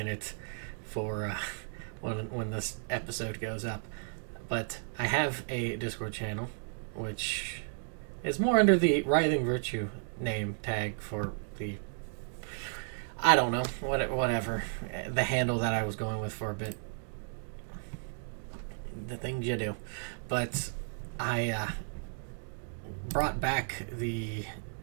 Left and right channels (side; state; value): left; silent; digital silence